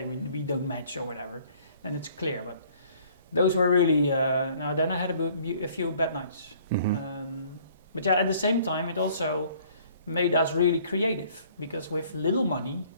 we don't match or whatever, then it's clear. But those were really, now then I had a few bad nights. But yeah, at the same time, it also made us really creative, because with little money,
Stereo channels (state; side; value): inverted; both; correlation -0.57